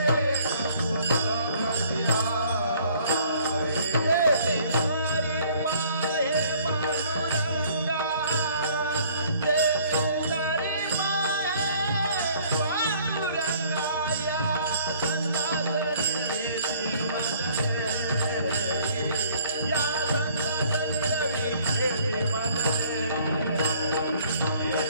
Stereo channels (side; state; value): both; inverted; correlation -0.57